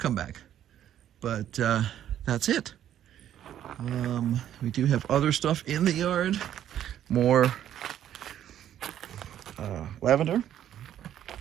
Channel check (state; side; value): quieter; left; 10.9 dB